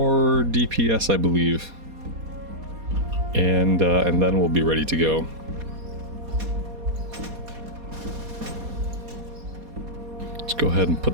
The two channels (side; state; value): left; late; 4.2 ms